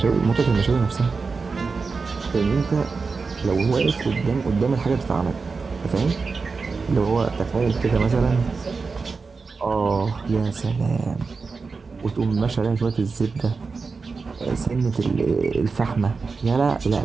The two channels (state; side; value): quieter; left; 4.6 dB